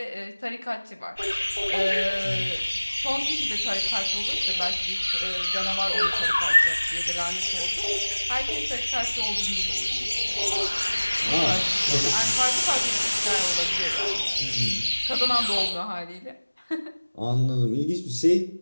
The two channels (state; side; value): inverted; both; correlation -1.00